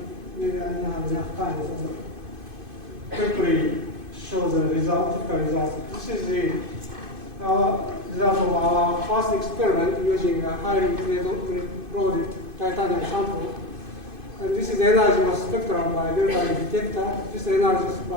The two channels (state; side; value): late; left; 2.5 ms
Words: Maybe I don't have enough time, so quickly show the result, typical result. This is our result of our first experiment using a highly loaded titanium sample. And this is energy of spectrum by delta E detector. This energy is